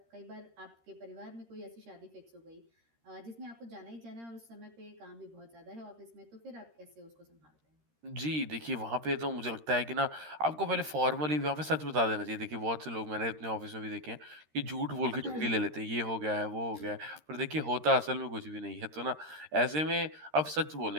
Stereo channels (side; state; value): left; late; 13 ms